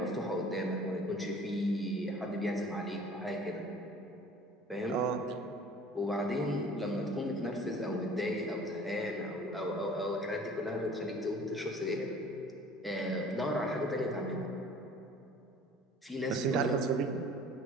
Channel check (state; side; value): normal; both; correlation 0.48